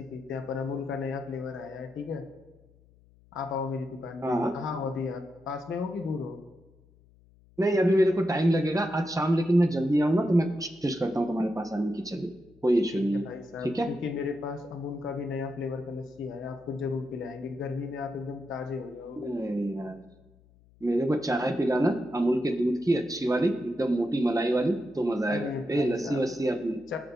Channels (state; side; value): noise; left; hum, 29 dB below the sound